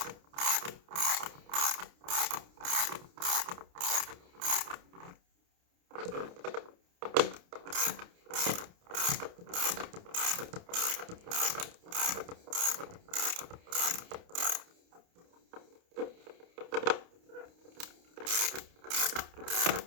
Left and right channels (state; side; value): late; left; 29 ms